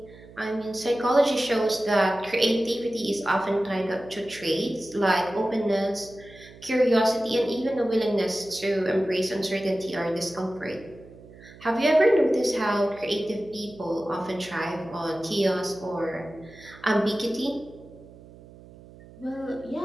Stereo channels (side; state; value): right; noise; hum, 20 dB below the sound